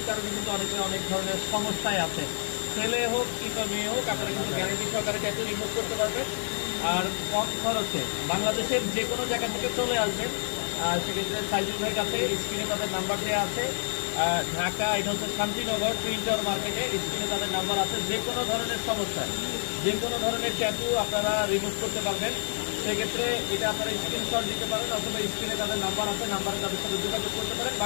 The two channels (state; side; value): silent; right; digital silence